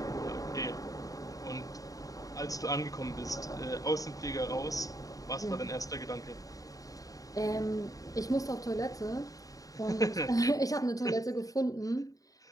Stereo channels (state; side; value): late; right; 0.17 ms